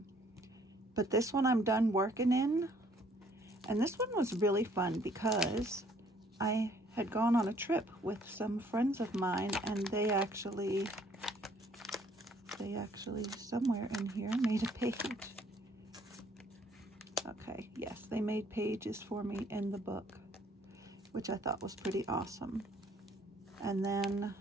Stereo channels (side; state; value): both; normal; correlation 0.62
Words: But this one I'm done working in, and this one was really fun because I had gone on a trip with some friends of mine, and they actually somewhere in here made a page. Okay, yes, they made pages for me in the book, which I thought was pretty awesome. And then